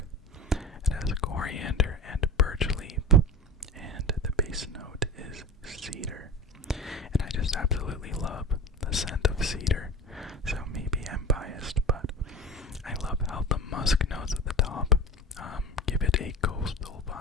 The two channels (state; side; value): normal; both; correlation 0.30